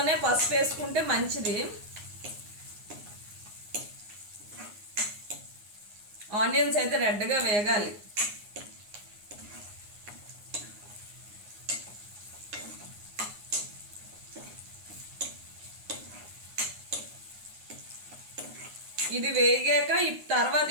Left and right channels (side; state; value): left; late; 9.7 ms